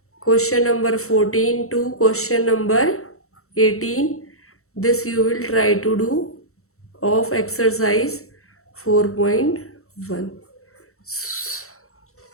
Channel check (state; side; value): late; right; 0.63 ms